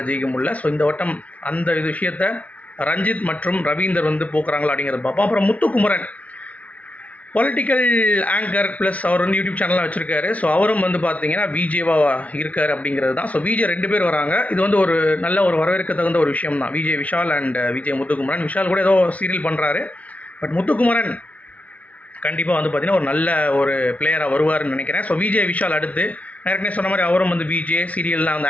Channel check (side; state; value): right; late; 0.068 ms